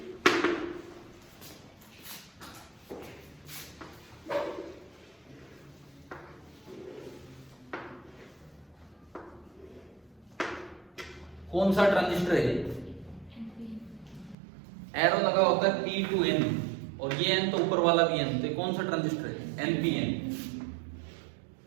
कौन सा ट्रांजिस्टर है? एरो लगा होता है P to N, और ये N तो ऊपर वाला भी N, तो कौन सा ट्रांजिस्टर है? NPN।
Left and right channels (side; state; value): left; drops out; at 14.4 s